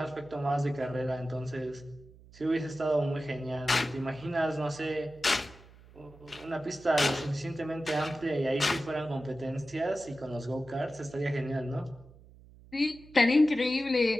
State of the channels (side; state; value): right; noise; hum, 22 dB below the sound